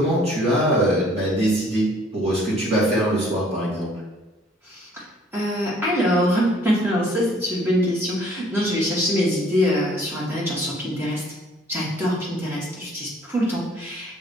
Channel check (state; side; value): normal; both; correlation 0.59